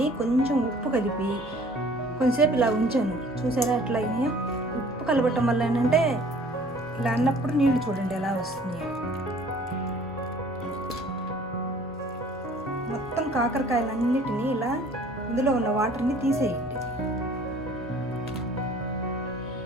కొంచెం ఉప్పు కలిపి కొంచెంసేపు ఇలా ఉంచాను. చూసారా ఎట్లా అయినాయో? ఉప్పు కలపటం వల్ల ఏంటంటే ఇలా అన్నప్పుడు నీళ్లు చూడండి ఎలా వస్తున్నాయో. మొత్తం కాకరకాయలన్నిటినీ ఇలా ఇందులో ఉన్న వాటర్ని తీసేయండి.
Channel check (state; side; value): normal; both; correlation 0.52